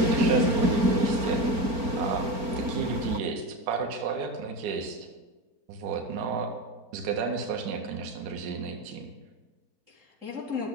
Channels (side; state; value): left; late; 4.4 ms